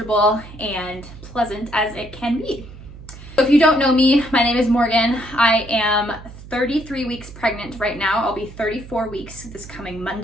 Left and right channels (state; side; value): noise; right; hum, 16 dB below the sound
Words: and pleasant as it can be. So if you don't know me, my name is Morgan. I am 33 weeks pregnant right now. I'll be 34 weeks this coming